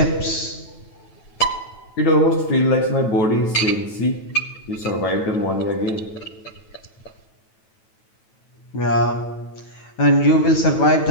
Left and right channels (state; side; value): late; right; 9.1 ms